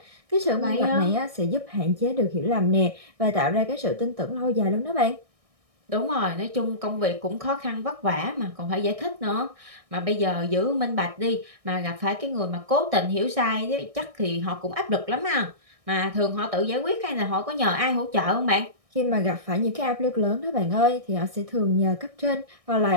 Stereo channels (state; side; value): late; left; 1.6 ms